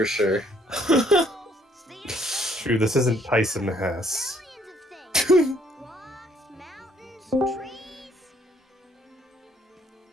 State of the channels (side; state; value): both; normal; correlation 0.65